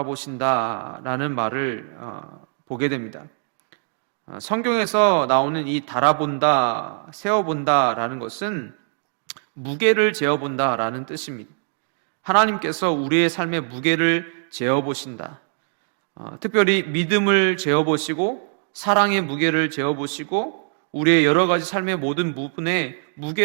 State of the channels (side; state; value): left; silent; digital silence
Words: 말을 보게 됩니다. 성경에서 나오는 이 달아본다, 세어본다라는 것은 무게를 재어본다라는 뜻입니다. 하나님께서 우리의 삶의 무게를 재어보신다. 특별히 믿음을 재어보시고 사랑의 무게를 재어보시고 우리의 여러 가지 삶의 모든 부분에